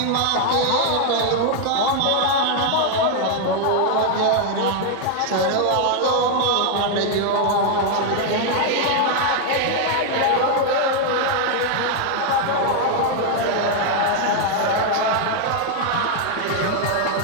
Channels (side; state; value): both; different; correlation 0.00